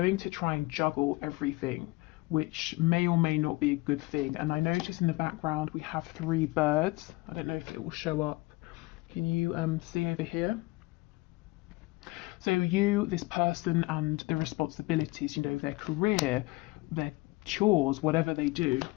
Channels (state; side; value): quieter; right; 22.5 dB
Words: to try and juggle everything, which may or may not be a good thing. And I notice in the background we have 3 birds. I don't know if it will show up. Can you see over here? So you, this person, and the responsibilities, you know, their career, their chores, whatever they do.